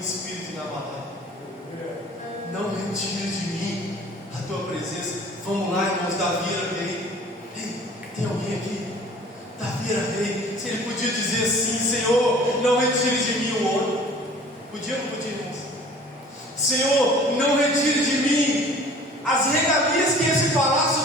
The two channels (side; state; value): both; normal; correlation 0.48